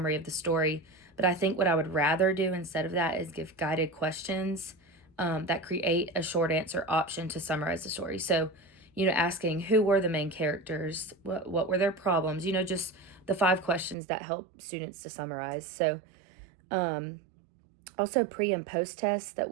of the story. But I think what I would rather do instead of that is give guided questions that create a short answer option to summarize the story. So, asking who were the main characters, what were their problems, just the 5 questions that help students to summarize. So, also pre and post tests that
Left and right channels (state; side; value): drops out; left; at 14.0 s